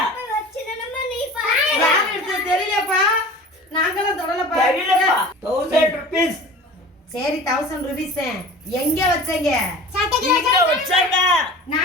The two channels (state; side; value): normal; both; correlation 0.39